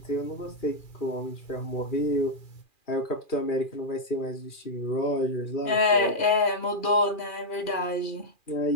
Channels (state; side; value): late; right; 2.4 ms